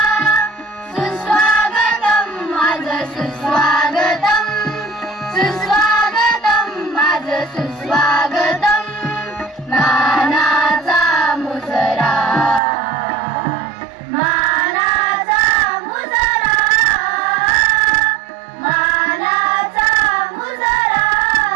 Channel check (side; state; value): left; drops out; at 12.6 s